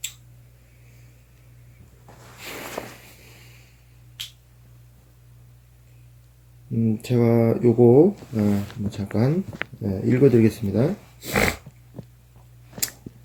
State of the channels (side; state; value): both; identical; correlation 1.00